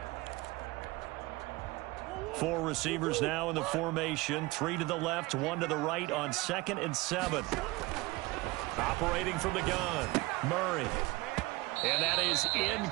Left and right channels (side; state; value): left; quieter; 21.6 dB